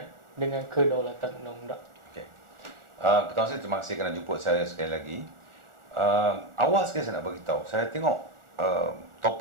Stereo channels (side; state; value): left; late; 1.4 ms